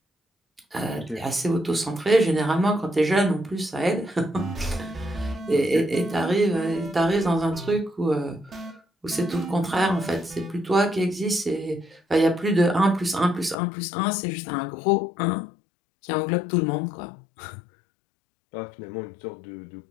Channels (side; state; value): right; drops out; at 13.6 s